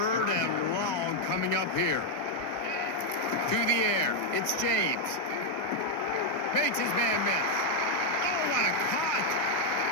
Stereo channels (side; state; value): right; late; 1.8 ms